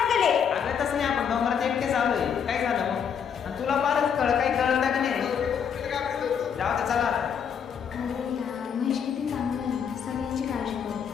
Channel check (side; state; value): right; quieter; 7.5 dB